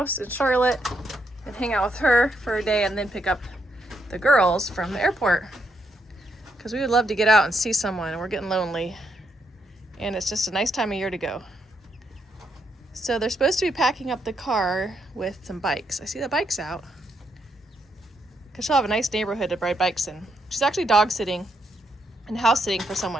in Charlotte and hang out with her for a day and then pick up the girls from the airport. Because we would love to get out and see someone and we're getting lonely. And it's just a nice time of year to go. So they're supposed to be packing up the car with some bikes. I see the bikes out. Because she'll have a nice neighborhood to ride bikes in. She's actually dog sitting and house sitting for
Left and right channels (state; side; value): normal; both; correlation 0.78